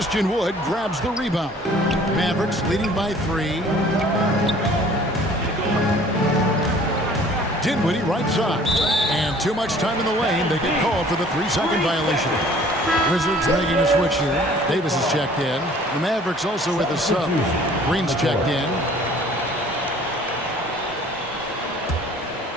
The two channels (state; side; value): normal; both; correlation 0.53